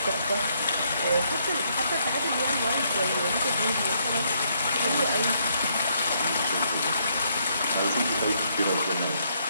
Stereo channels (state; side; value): inverted; both; correlation -0.72